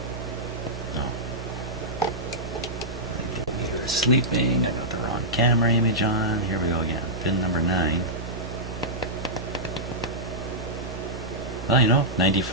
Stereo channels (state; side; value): noise; right; hum, 19 dB below the sound